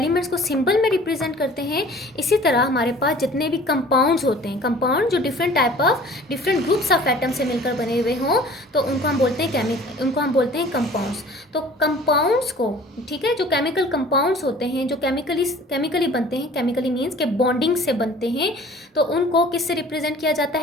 को सिंबल में रिप्रेजेंट करते हैं, इसी तरह हमारे पास जितने भी कंपाउंड्स होते हैं, कंपाउंड जो different type of different groups of atom से मिलकर बने हुए हों, तो उनको हम बोलते हैं उनको हम बोलते हैं कंपाउंड्स। तो कंपाउंड्स को, ठीक है, जो केमिकल कंपाउंड्स होते हैं, जो केमिकली बनते हैं, केमिकली मीन्स के बॉन्डिंग से बनते हैं, तो उनको किससे रिप्रेजेंट किया जाता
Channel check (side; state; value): both; normal; correlation 0.48